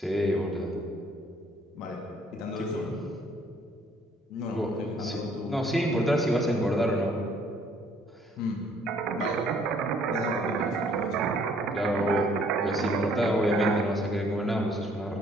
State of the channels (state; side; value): normal; both; correlation 0.62